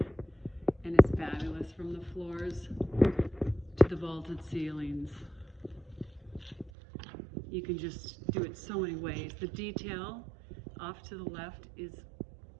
and it's fabulous from the floors to the vaulted ceilings. You can just do it so many ways. The detail off to the left is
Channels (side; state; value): left; drops out; at 6.7 s